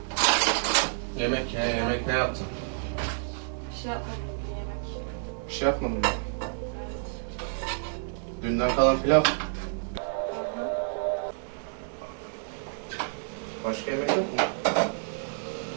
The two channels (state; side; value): silent; left; digital silence